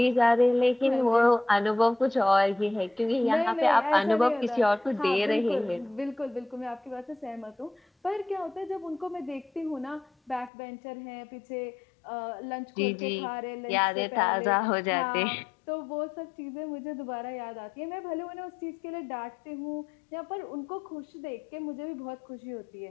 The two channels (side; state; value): right; drops out; at 10.5 s